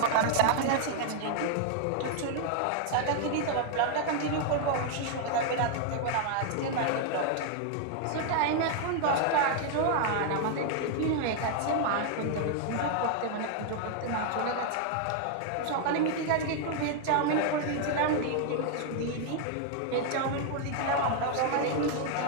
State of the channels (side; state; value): both; different; correlation 0.00